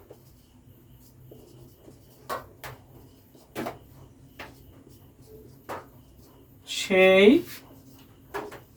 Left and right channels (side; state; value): both; identical; correlation 1.00